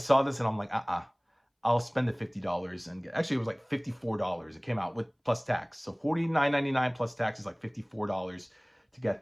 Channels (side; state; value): both; identical; correlation 1.00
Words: this and I'm like, I'll spend the $50 and actually it was like $54. It came out with plus tax. So $49.99 plus tax is like $54 to get